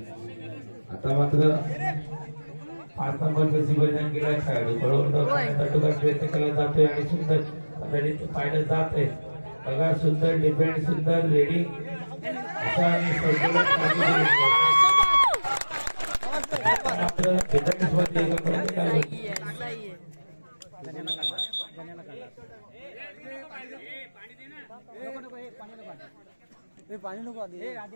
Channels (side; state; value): both; inverted; correlation -1.00